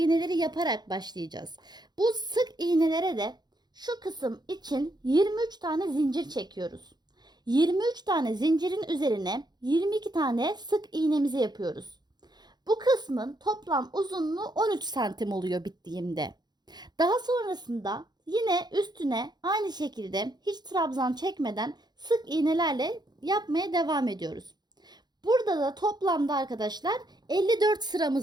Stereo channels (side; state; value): left; late; 0.20 ms